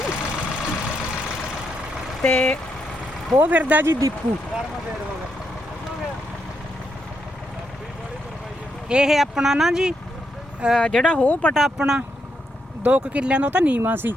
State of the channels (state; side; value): normal; both; correlation 0.80